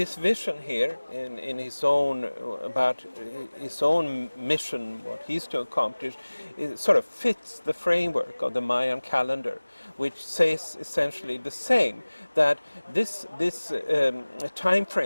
vision here in his own, about his own mission, what he's to accomplish, it sort of fits the framework of the Mayan calendar, which says essentially the same, that this time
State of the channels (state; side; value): inverted; both; correlation -1.00